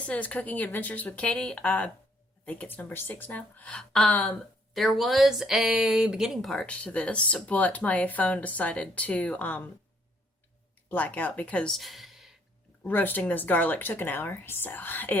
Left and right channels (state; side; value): normal; both; correlation 0.67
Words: is Cooking Adventures with Katie. I think it's number 6 now. There was a beginning part to this, but my phone decided to black out because roasting this garlic took an hour. So